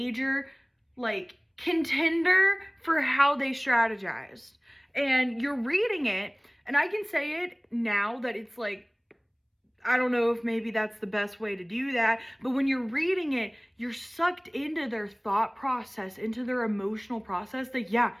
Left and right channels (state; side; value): identical; both; correlation 1.00